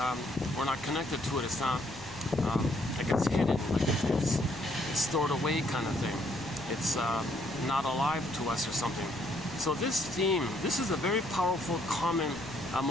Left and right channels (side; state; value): left; noise; rumble, 19 dB below the sound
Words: We're not connected to it. It's not like it's hidden, like it's stored away, kind of thing. It's not alive to us or something. So this theme, this is a very powerful, common